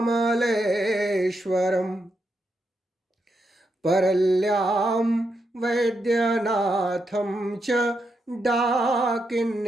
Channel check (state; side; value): normal; both; correlation 0.83